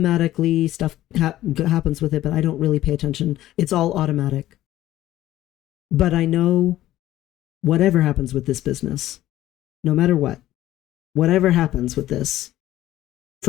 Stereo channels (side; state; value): right; quieter; 14.4 dB